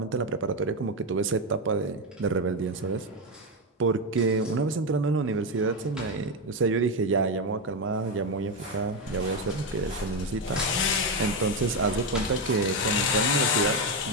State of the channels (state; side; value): normal; both; correlation 0.09